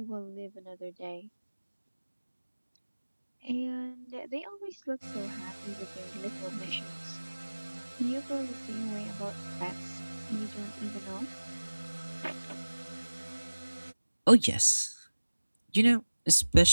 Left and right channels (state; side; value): inverted; both; correlation -1.00